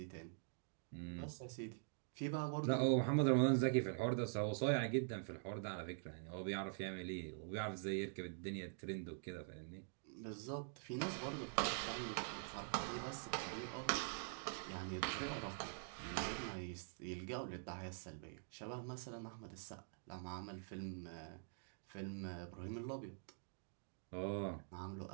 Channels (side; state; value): left; silent; digital silence